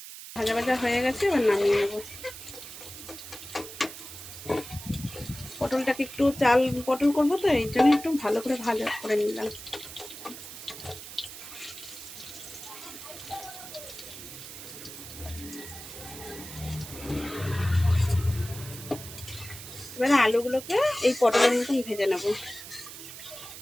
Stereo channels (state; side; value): noise; right; hiss, 12 dB below the sound